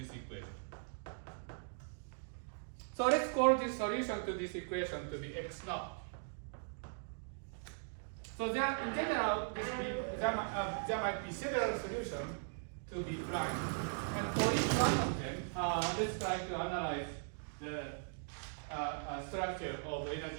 equation. So let's call this solution to this equation to be x naught. So there, in general, there might be several solutions to be prime. And for each one of them, let's try to analyze the structure of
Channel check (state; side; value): silent; left; digital silence